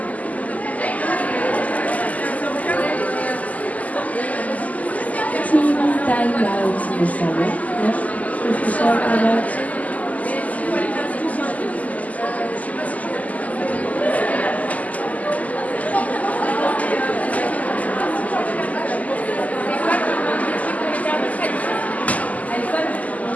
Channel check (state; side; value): late; right; 0.075 ms